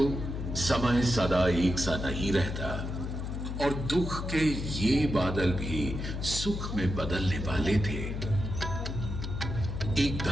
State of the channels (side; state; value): left; noise; hum, 4 dB below the sound